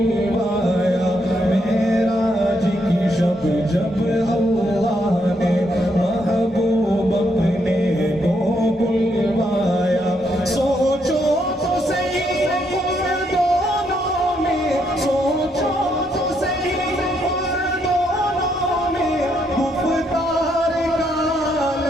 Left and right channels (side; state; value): both; normal; correlation 0.76